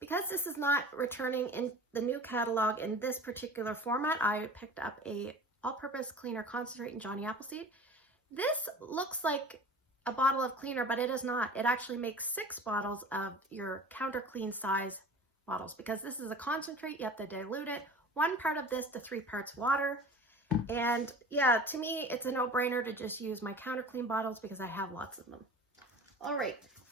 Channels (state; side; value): normal; both; correlation 0.39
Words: this is not returning in the new catalog in this particular format, I picked up a all-purpose cleaner concentrate in Johnny Appleseed. This looks like a bottle of cleaner, but it is not. It actually makes 6 bottles of your counter clean size bottles, because this is a concentrate. You have to dilute it. 1 part of this to 3 parts water. And yeah, to me, it's a no-brainer to just use my counter clean bottles because I have lots of them. All right.